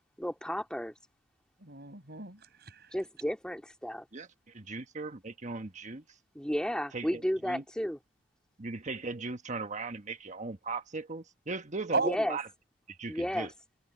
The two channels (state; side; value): normal; both; correlation 0.52